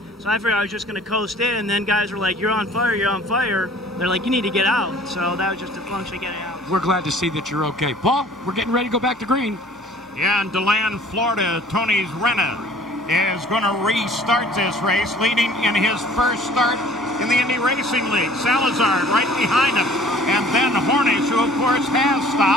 so I figured I was just going to coast in, and then guys were like, you're on fire, you're on fire. They're like, you need to get out. So that was just a function of getting out. We're glad to see that you're okay. Paul, we're getting ready to go back to green. Yeah, in DeLand, Florida, Tony Renna is going to restart this race, leading in his first start in the Indy Racing League. Salazar right behind him, and then Hornish, who of course has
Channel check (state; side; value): normal; both; correlation 0.51